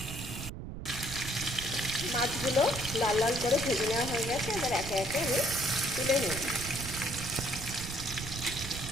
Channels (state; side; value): noise; right; rumble, 8 dB below the sound